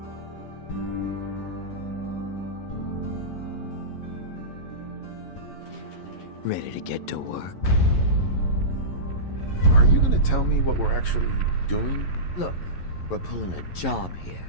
Ready to get to work? Are you gonna tell me what we're actually doing? Look, we're pulling a job here.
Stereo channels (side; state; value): right; late; 11 ms